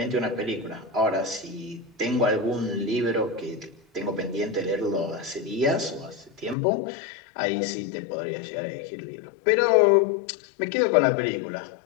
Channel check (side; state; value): right; drops out; at 6.6 s